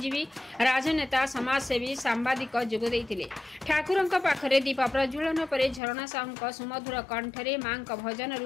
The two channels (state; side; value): drops out; right; at 5.8 s